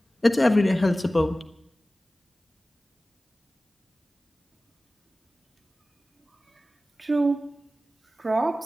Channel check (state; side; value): normal; both; correlation 0.96